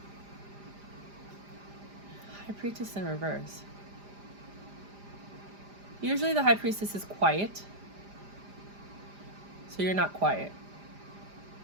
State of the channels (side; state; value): left; late; 5.0 ms